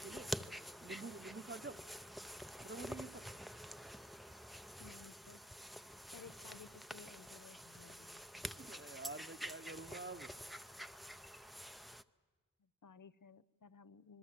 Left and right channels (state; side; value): normal; both; correlation 0.69